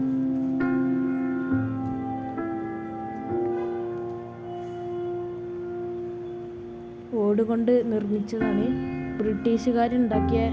ഓട് കൊണ്ട് നിർമ്മിച്ചതാണ്. ബ്രിട്ടീഷുകാരുണ്ടാക്കിയ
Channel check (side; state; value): both; identical; correlation 1.00